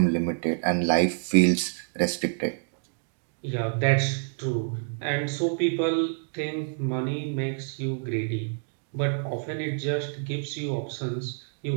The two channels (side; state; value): left; silent; 60 dB below the other